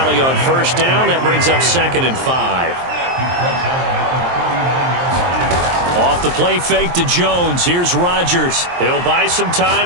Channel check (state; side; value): late; left; 23 ms